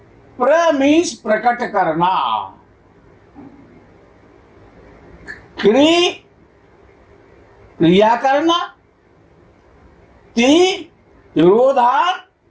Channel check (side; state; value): both; identical; correlation 1.00